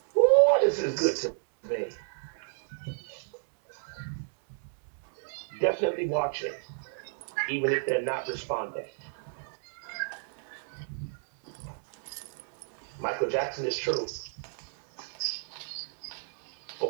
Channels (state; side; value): silent; left; digital silence